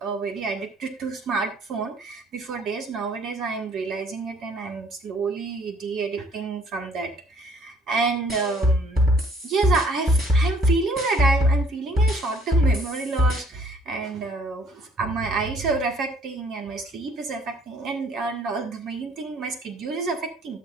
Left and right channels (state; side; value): normal; both; correlation 0.61